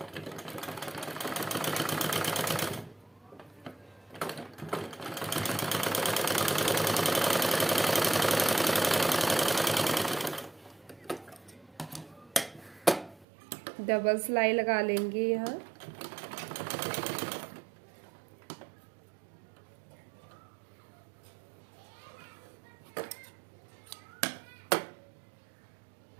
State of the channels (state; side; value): drops out; left; at 13.2 s